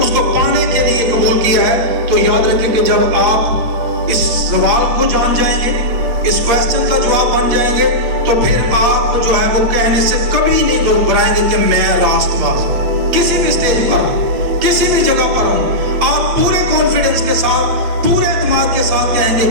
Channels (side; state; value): left; late; 8.3 ms